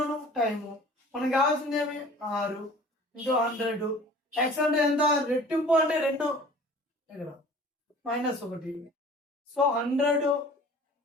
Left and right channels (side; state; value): both; normal; correlation 0.46